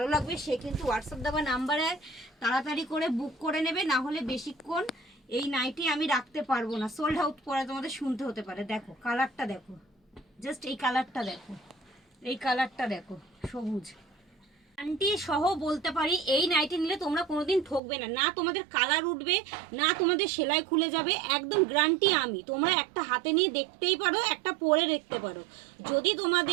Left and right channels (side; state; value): left; drops out; at 17.8 s